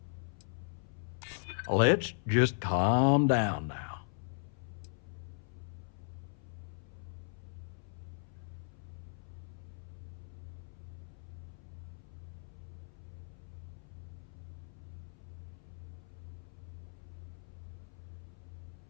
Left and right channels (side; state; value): right; silent; 52 dB below the other